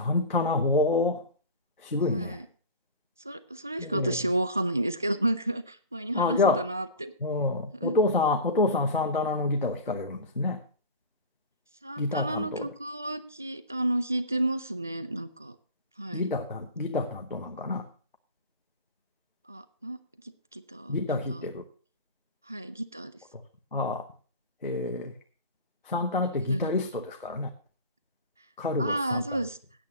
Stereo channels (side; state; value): both; inverted; correlation -0.31